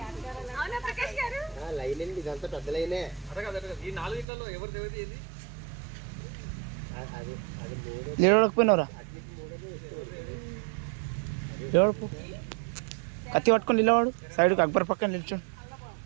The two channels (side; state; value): left; drops out; at 4.2 s